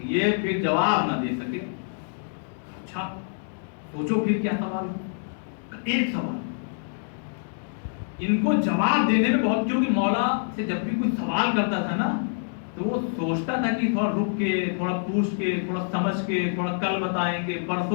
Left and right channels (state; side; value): silent; right; digital silence